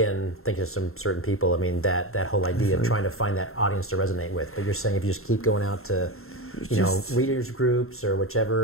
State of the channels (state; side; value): late; right; 0.62 ms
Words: thinking of some certain people, I mean, that whole idea of trying to find that audience to resonate with. But you're saying if you just keep going out to, readers groups or